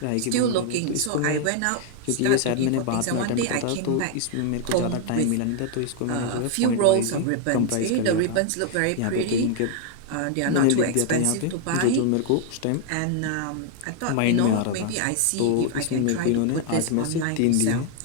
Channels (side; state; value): both; different; correlation 0.00